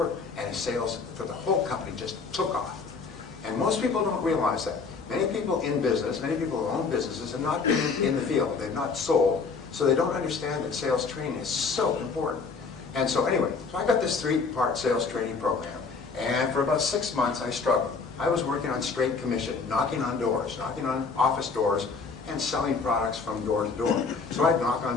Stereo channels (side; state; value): right; quieter; 4.8 dB